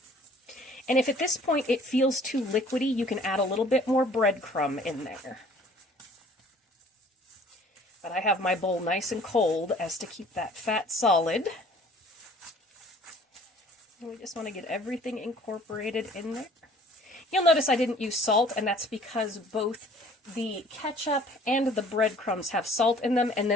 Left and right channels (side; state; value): both; normal; correlation 0.53